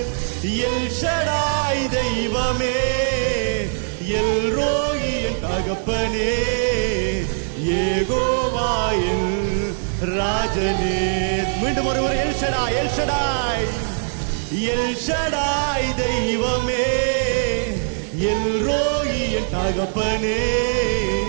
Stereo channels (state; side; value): silent; left; digital silence